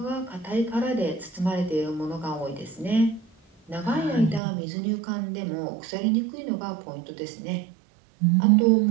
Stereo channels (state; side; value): drops out; left; at 4.4 s